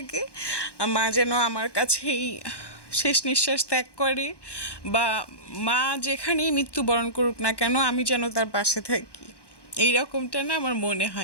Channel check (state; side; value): late; right; 1.1 ms